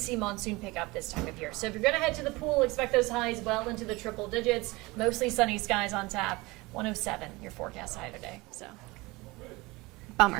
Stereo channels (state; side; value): quieter; left; 22.7 dB